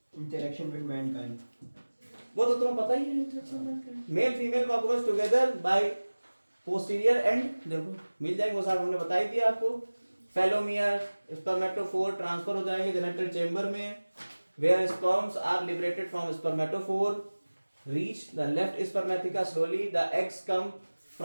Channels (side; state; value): both; inverted; correlation -1.00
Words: इंटरेक्शन विद मैनकाइंड, वो तो तुम्हें पता ही है। Interaction Mankind, male female cockroach together by posterior and, देखो मिल जाएंगे वो साहब, हमने बताई दिया आपको। फेलोमियर, स्पर्मेटोफोर ट्रांसफर हो जाएंगे जेनिटल चेंबर में, where sperms are liberated from spermatophore, reach the left spermatheca slowly, the eggs come